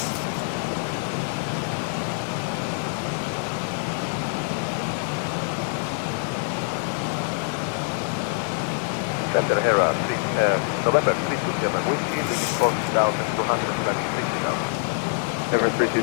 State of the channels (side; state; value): right; silent; 62 dB below the other